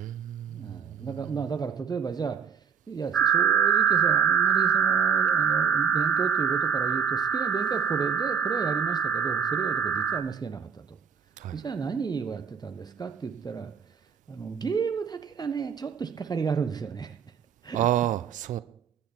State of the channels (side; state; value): left; quieter; 7.0 dB